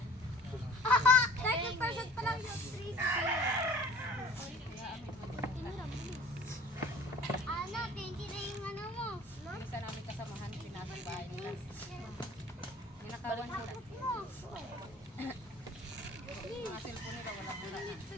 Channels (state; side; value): normal; both; correlation 0.47